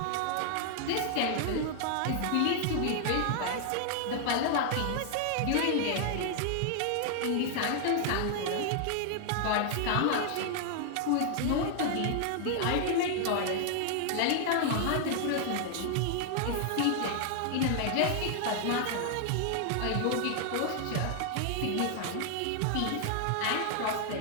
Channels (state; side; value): different; both; correlation 0.00